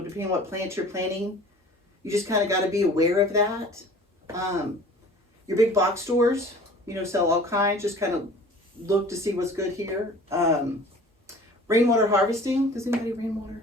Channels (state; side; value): normal; both; correlation 0.45